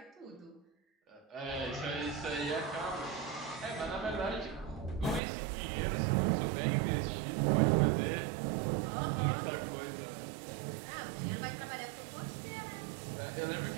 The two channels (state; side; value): drops out; left; at 5.2 s